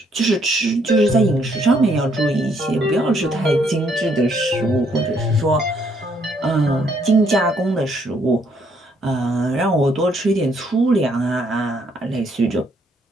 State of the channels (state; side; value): normal; both; correlation 0.70